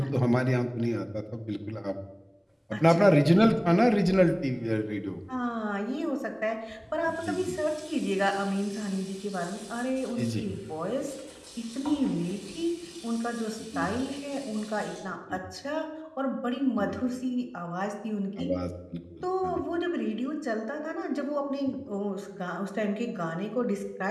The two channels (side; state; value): both; identical; correlation 1.00